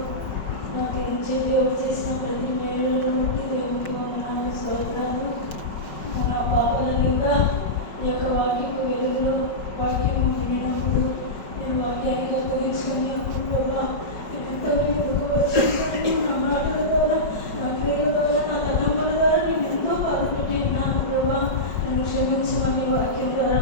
నాకు నుంచి దేవుడు చేసిన ప్రతి మేలును బట్టి దేవునికి వందనాలు, స్తోత్రాలు. నా పాపాలని కూడా ఈ యొక్క వాక్యపు వెలుగులో వాక్యము వినినప్పుడు నేను వాక్యాన్ని అప్పగించుకొని ప్రభా ఎంతో ముందుకు వచ్చి నా మాటల ద్వారా, నా క్రియల ద్వారా, నా తలంపుల ద్వారా నేను ఎంతో బాధపెట్టి ఉన్నాను ప్రభా. నన్ను క్షమించమని వాక్యం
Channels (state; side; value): late; right; 5.0 ms